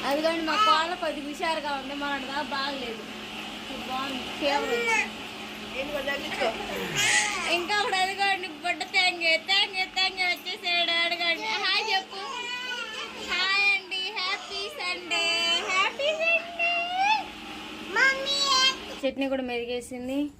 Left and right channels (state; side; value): identical; both; correlation 1.00